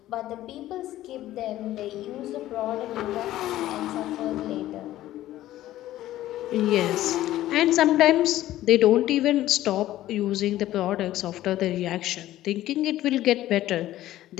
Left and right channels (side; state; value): right; quieter; 14.3 dB